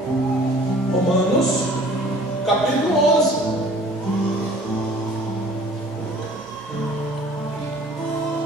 Romanos, capítulo 11.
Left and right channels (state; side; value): normal; both; correlation 0.50